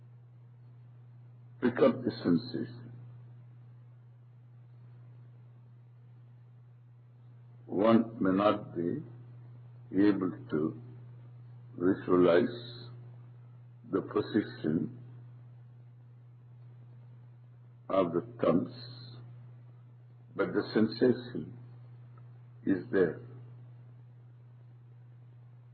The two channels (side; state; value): both; identical; correlation 1.00